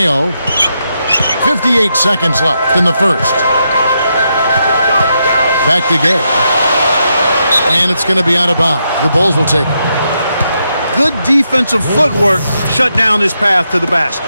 58 seconds left in the first. Back to Gay. And it's going to be out of bounds. The Bulls will take it. Good defensive footwork shut down his path to the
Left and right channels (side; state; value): both; inverted; correlation -0.82